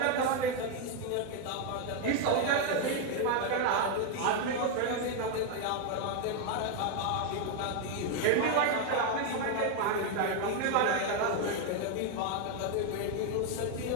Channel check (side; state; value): both; different; correlation 0.01